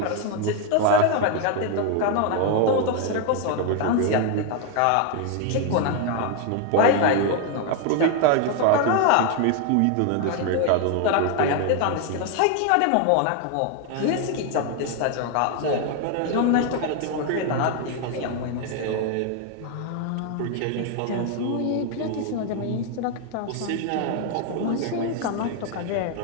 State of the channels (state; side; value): different; both; correlation 0.01